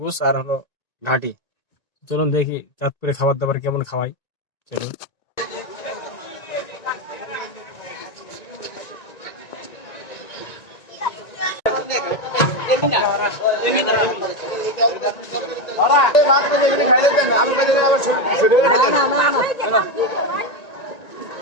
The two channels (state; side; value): late; right; 1.9 ms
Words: গোস আর হলো ঘাটি। চলুন দেখি চাঁদপুরে খাবার দাবার কেমন খাওয়াই। চলুন।